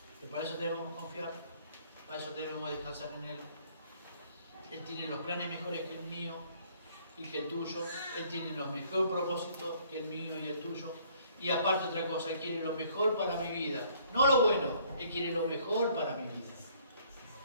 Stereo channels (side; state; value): both; inverted; correlation -0.61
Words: Pero para eso debemos confiar, para eso debemos descansar en Él. Él tiene los planes mejores que el mío y que el tuyo. Él tiene los mejores propósitos que el mío y el tuyo. Y aparte otra cosa, Él quiere lo mejor para mi vida. No lo bueno, Él quiere lo mejor para mi vida.